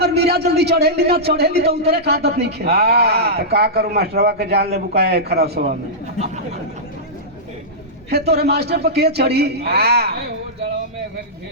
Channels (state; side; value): normal; both; correlation -0.13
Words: मीरा जल्दी चढ़ेली ना चढ़ेली तो उतरे का आदत नहीं खे। तो का करूं मास्टरवा के जान ले बुकाए खराब सवाल में। हे तोरे मास्टर पर के चढ़ी,